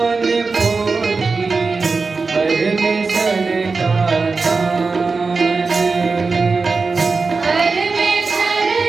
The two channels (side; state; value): left; quieter; 4.3 dB